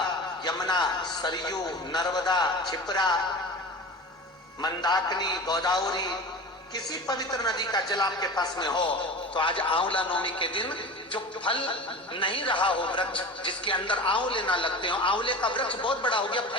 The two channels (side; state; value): both; normal; correlation 0.33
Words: यमुना, सरयू, नर्मदा, क्षिप्रा, मंदाकिनी, गोदावरी, किसी पवित्र नदी का जल आपके पास में हो तो आज आंवला नवमी के दिन जो फल नहीं रहा हो, वृक्ष जिसके अंदर आंवले ना लगते हो, आंवले का वृक्ष बहुत बड़ा हो गया,